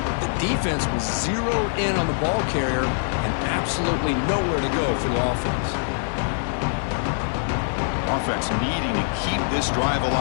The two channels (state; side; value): silent; right; digital silence